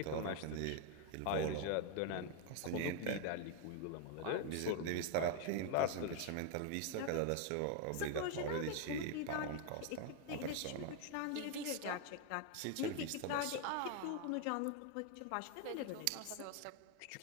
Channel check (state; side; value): different; both; correlation 0.00